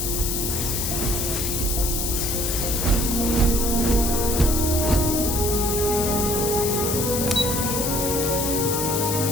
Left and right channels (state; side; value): noise; left; hiss, 1 dB below the sound